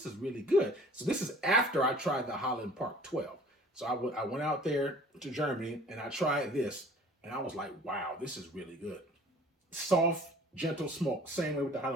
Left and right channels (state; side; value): normal; both; correlation 0.49